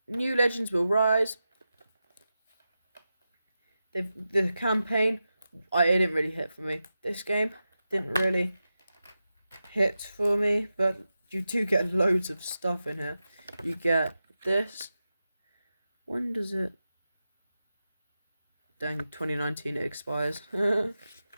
New Legends Will Rise. The campaign, it didn't really hit for me. This game didn't really hit for me, but you do get loads of stuff in here. You get this. When does it? Dang, 2019 it expires. Put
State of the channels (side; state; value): both; inverted; correlation -0.91